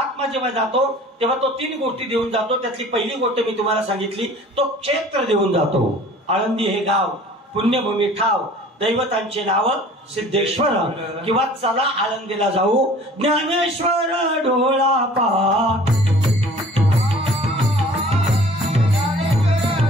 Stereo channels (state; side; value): normal; both; correlation 0.48